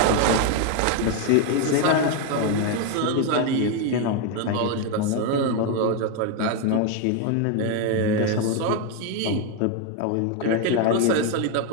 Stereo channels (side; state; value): both; different; correlation 0.01